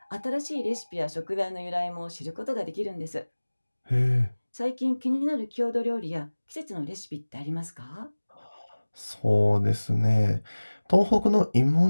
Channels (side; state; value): both; inverted; correlation -1.00